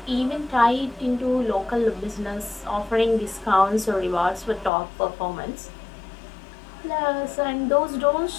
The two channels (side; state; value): right; drops out; at 4.7 s